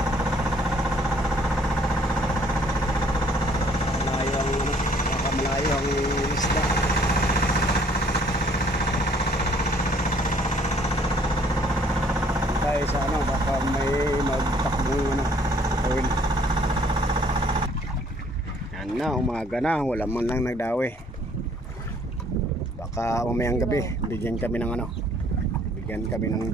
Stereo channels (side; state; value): both; normal; correlation 0.61